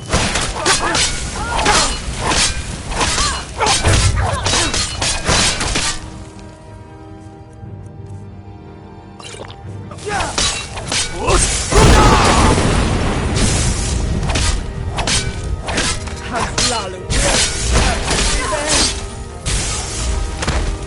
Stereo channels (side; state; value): both; identical; correlation 1.00